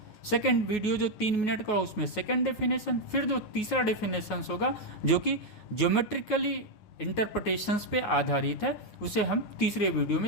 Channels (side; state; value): right; late; 9.5 ms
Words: सेकंड वीडियो जो 3 मिनट का उसमें सेकंड डेफिनेशन, फिर जो तीसरा डेफिनेशंस होगा जो कि ज्योमेट्रिकली इंटरप्रिटेशंस पे आधारित है, उसे हम तीसरे वीडियो